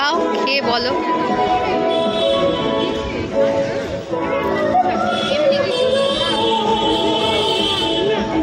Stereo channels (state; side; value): identical; both; correlation 1.00